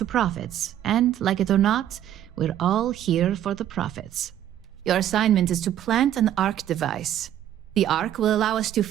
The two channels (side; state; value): left; quieter; 11.4 dB